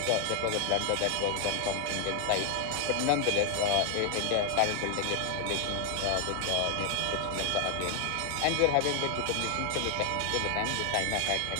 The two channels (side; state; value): both; different; correlation 0.00